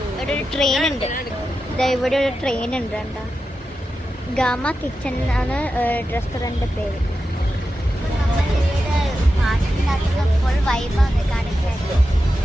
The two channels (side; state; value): both; normal; correlation 0.90